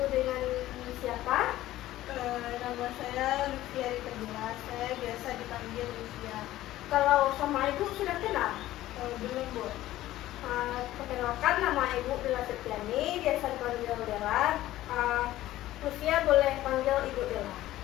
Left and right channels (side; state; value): right; quieter; 15.0 dB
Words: dengan siapa? Nama saya Lutfia Rita. Saya biasa dipanggil Lutfia. Kalau sama Ibu sudah kenal? Belum Bu. Perkenalkan, nama Ibu Dela Septiani, biasa dipanggil Dela. Lutfia boleh panggil Ibu Dela.